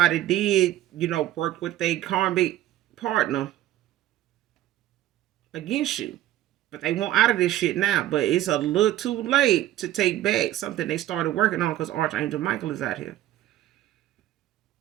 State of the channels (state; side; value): quieter; left; 13.8 dB